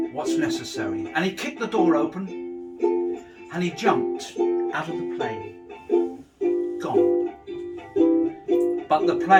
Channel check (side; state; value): both; identical; correlation 1.00